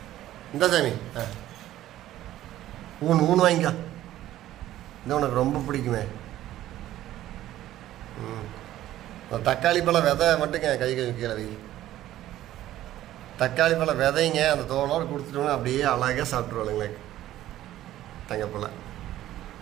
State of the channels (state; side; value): quieter; left; 13.8 dB